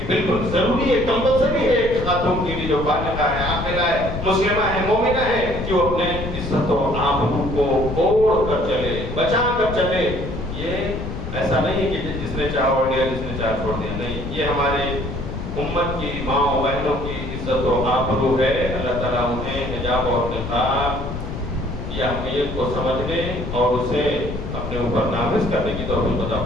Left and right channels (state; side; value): noise; left; rumble, 7 dB below the sound